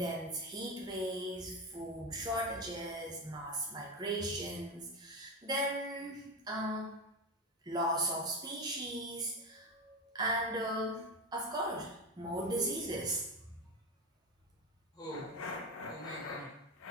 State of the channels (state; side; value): normal; both; correlation 0.18